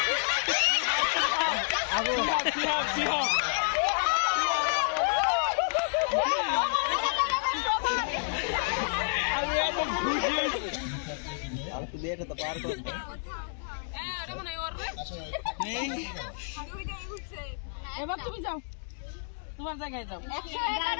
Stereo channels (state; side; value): silent; right; digital silence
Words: এবার তুমি যাও, তোমার জায়গায় যাও।